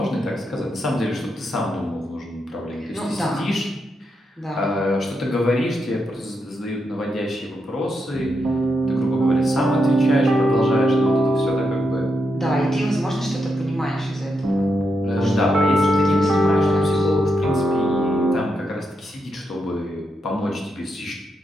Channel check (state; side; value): normal; both; correlation 0.83